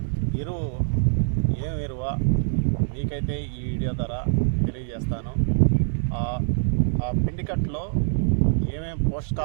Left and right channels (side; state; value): left; silent; digital silence